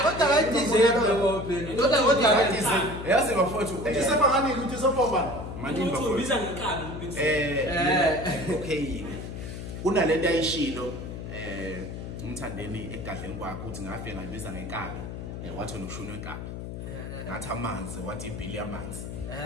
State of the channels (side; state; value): left; noise; hum, 8 dB below the sound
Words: kodwa bayidizele ngobheni kodwa bayidizele yazi bafowethu uthi sebangani ukuthi sobobani manini Uthi bafowethu ubiza ngenkani uBiggs. okay kunalento ayishilo umthandeni egadleni kwakhe uthi ngafike ngayibiza ngenkabi wathi nokushuna wenkabi ngathi amanzi wathi ibhili yamanzi